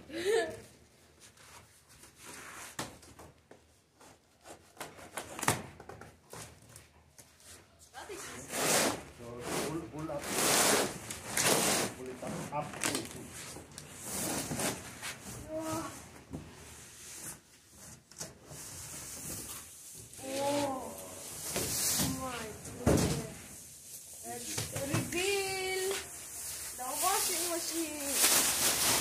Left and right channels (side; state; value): both; identical; correlation 1.00